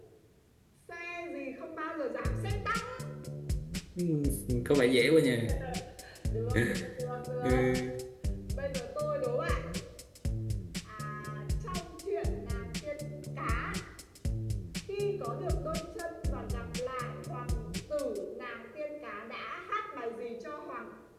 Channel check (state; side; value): identical; both; correlation 1.00